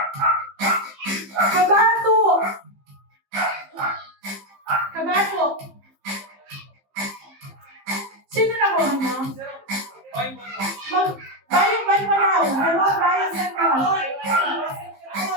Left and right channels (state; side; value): late; left; 15 ms